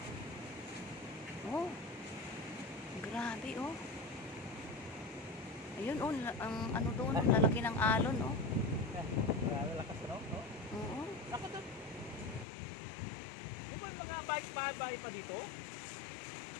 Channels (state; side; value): drops out; right; at 12.5 s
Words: Oh. Grabe oh. Ayun oh, ang ano doon, lalaki ng alon oh. Grabe lakas no? Oo. Ako doon. Di ba yung mga bike pa dito?